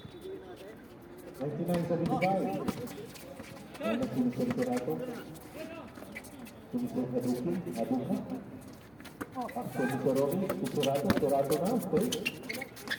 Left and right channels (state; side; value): noise; right; hum, 30 dB below the sound